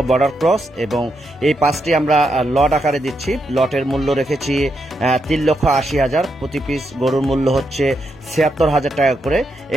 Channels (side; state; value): both; normal; correlation 0.82